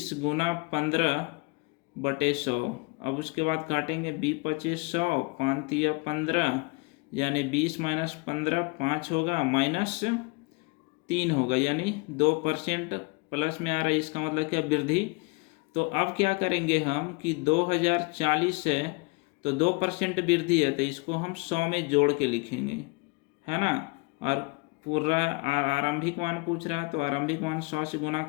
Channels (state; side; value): quieter; right; 29.0 dB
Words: गुना 15/100। अब उसके बाद काटेंगे 20×25 100, 5×3 15, यानी 20 - 15 5 होगा, -3 होगा, यानी 2% प्लस में आ रहा है। इसका मतलब क्या, वृद्धि। तो अब क्या करेंगे हम कि 2040 है तो 2% वृद्धि है तो इसको हम 100 में जोड़ के लिखेंगे, है ना। और पूरा आरंभिक मान पूछ रहा है तो आरंभिक मान 100 से गुना